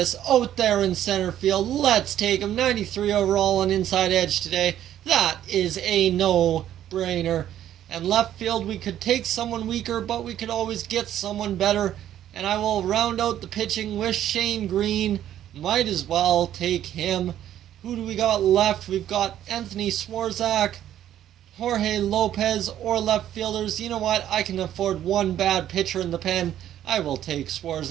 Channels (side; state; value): left; quieter; 11.5 dB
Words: out there in center field? Let's take him. 93 overall on inside edge today. That is a no-brainer. And left field, we could take someone weaker, but we could always get someone better. And I will round out the pitching with Shane Green. Might as well take him. Who do we got left? We've got Anthony Swarzak, Jorge Lopez, or left fielders. You know what? I can afford one bad pitcher in the pen. I will take